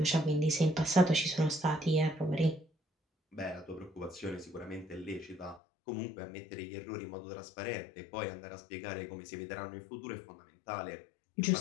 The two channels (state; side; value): drops out; right; at 5.6 s